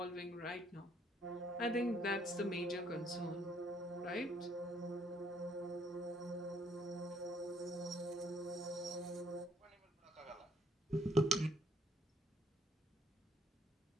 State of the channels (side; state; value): both; normal; correlation 0.66